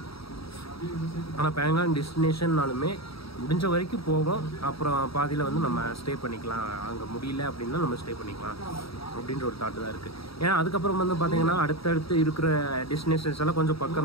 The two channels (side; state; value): right; late; 0.76 ms